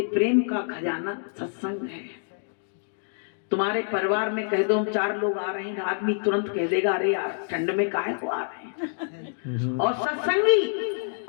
प्रेम का खजाना सत्संग है। तुम्हारे परिवार में कह दो हम 4 लोग आ रहे हैं, आदमी तुरंत कह देगा अरे यार ठंड में काहे को आ रहे हैं। और सत्संगी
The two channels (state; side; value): silent; right; digital silence